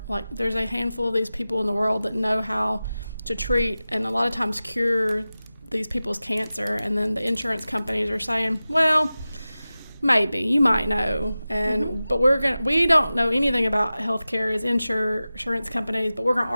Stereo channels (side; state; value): both; inverted; correlation -0.96